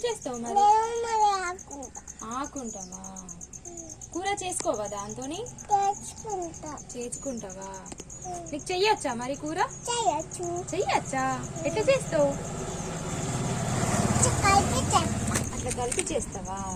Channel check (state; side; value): identical; both; correlation 1.00